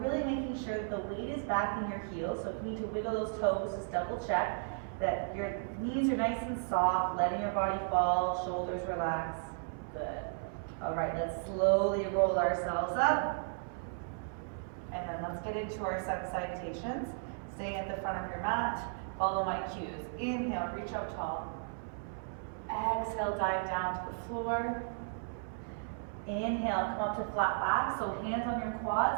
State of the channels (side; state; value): left; silent; 55 dB below the other